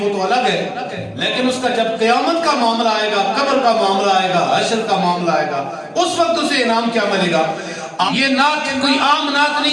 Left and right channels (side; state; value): both; identical; correlation 1.00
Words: وہ تو الگ ہے، لیکن اس کا جب قیامت کا معاملہ آئے گا، قبر کا معاملہ آئے گا، حشر کا معاملہ آئے گا، اس وقت اسے انعام کیا ملے گا؟ یہ نعت کوئی عام نعت